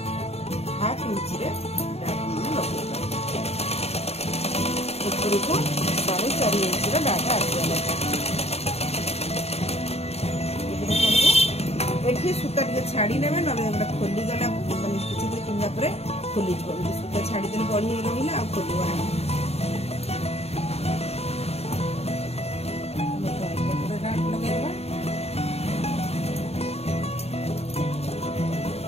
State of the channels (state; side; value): late; right; 0.30 ms